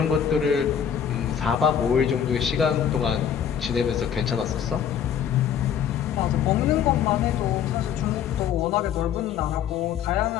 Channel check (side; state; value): right; quieter; 8.6 dB